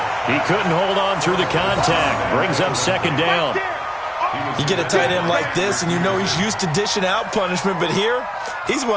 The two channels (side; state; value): both; identical; correlation 1.00